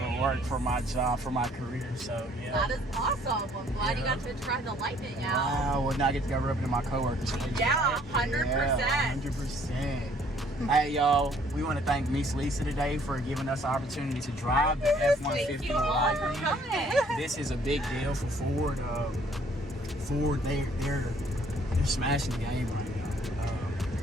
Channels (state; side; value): normal; both; correlation 0.61